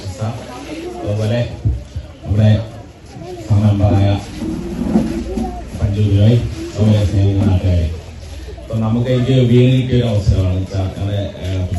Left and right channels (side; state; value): both; identical; correlation 1.00